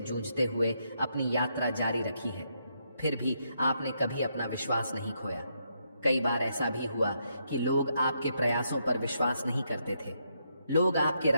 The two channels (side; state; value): both; inverted; correlation -0.78